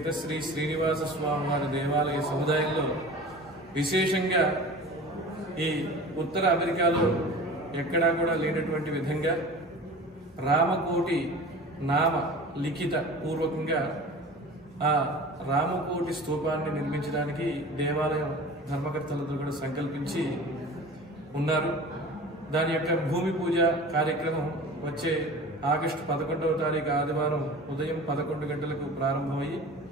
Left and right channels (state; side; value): normal; both; correlation 0.38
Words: శ్రీ శ్రీనివాస స్వామి వారి దేవాలయ సముదాయంలో విశేషంగా ఈ ఉత్తర అమెరికాలో ఎక్కడా కూడా లేనటువంటి విధంగా రామకోటి నామ లిఖిత పూర్వకంగా ఆ రామకోటి స్తూపాన్ని నిర్మించడానికి దేవాలయం ధర్మకర్తలతో కూడా సంకల్పించి ఉన్నారు. దాని యొక్క భూమి పూజ కార్యక్రమం వచ్చే ఆగస్టు 11వ తారీఖు ఆదివారం ఉదయం 11 గంటలకు ప్రారంభమయ్యి